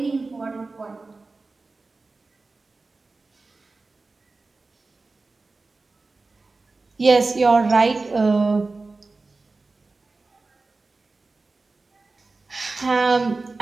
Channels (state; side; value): quieter; left; 3.6 dB